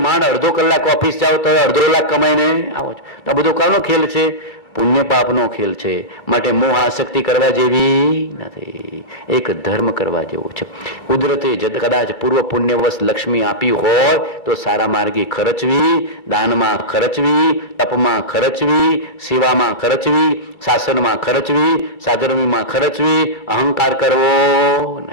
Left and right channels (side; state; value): right; late; 2.4 ms